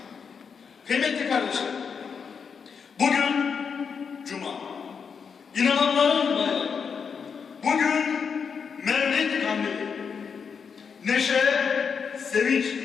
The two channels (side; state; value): right; quieter; 6.2 dB